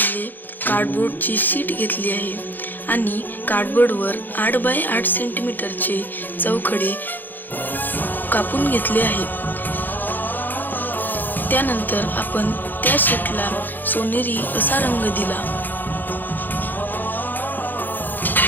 कार्डबोर्डची शीट घेतली आहे आणि कार्डबोर्डवर 8 बाय 8 सेंटीमीटरचे चौखडे कापून घेतले आहे. त्यानंतर आपण त्या शीटला सोनेरी असा रंग दिला.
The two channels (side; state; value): right; late; 0.088 ms